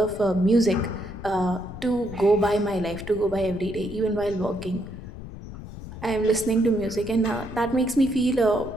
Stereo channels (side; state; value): left; noise; rumble, 12 dB below the sound